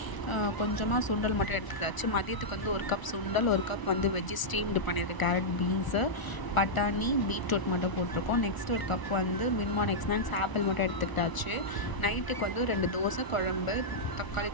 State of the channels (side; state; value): right; late; 1.0 ms